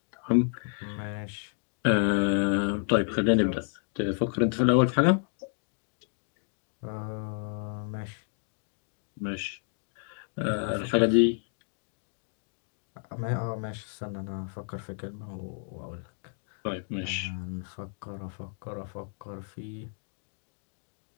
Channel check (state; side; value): silent; right; 57 dB below the other